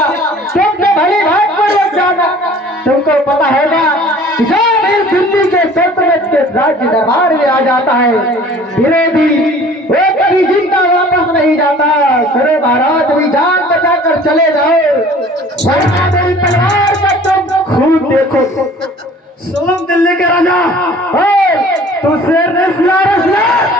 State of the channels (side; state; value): both; normal; correlation 0.49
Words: तुमने भली भाग पर जाना। तुमको पता होगा जो भी दिल्ली के सल्तनत के राज्य दरबार में आ जाता है विरोधी वो कभी जिंदा वापस नहीं जाता। सुनो महाराज, भी जान बचा कर चले जाओ वरना मेरी तलवार का तुम खून देखो। सुन दिल्ली के राजा, तू शेर ने सुना